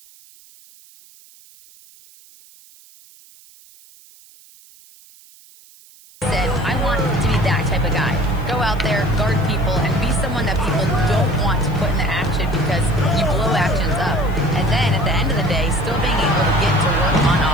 said, I want to be that type of guy. Go out there, guard people, and be someone that people don't want to put in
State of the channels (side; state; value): right; noise; hiss, 25 dB below the sound